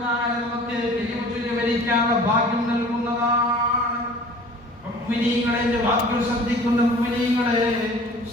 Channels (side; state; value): both; normal; correlation 0.46